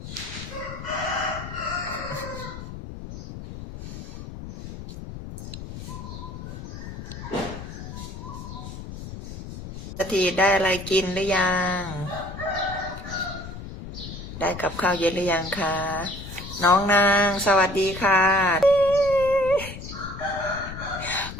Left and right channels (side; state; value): left; noise; rumble, 10 dB below the sound